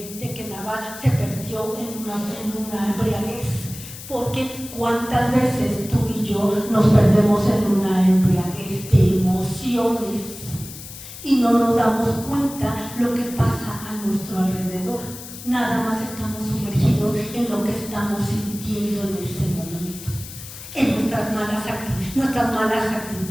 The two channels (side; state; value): left; noise; hiss, 13 dB below the sound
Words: Nabal se perdió en una embriaguez? Porque cuántas veces tú y yo nos perdemos en una embriaguez de emociones y no nos damos cuenta lo que pasa a nuestro alrededor. Nada más estamos sumergidos en lo que estamos sintiendo en ese momento, en nuestras malas